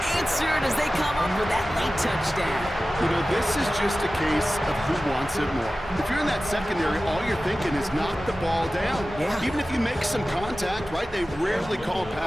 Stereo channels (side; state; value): both; normal; correlation 0.95